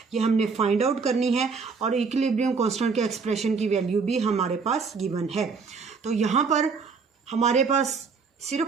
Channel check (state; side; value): quieter; left; 5.1 dB